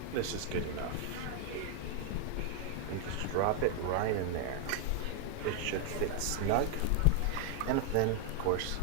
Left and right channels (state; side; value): different; both; correlation 0.00